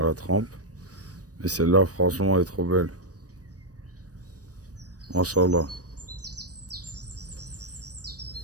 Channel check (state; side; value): late; left; 0.67 ms